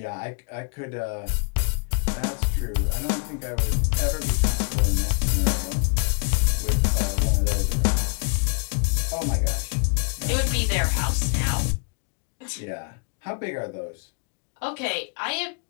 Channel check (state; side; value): quieter; right; 35.7 dB